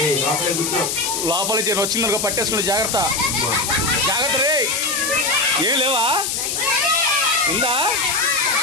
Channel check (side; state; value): left; noise; hiss, 1 dB below the sound